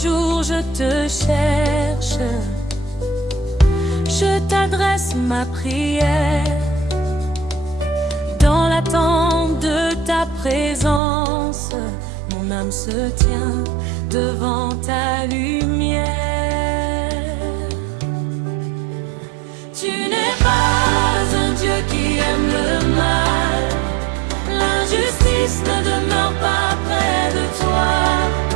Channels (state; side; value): drops out; left; at 11.0 s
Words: je te cherche, je t'adresse ma prière. Dans l'attente de ta présence, mon âme se tient devant ta lumière. Tu n'es pas un Dieu qui aime le mal, l'injustice ne demeure pas près de toi.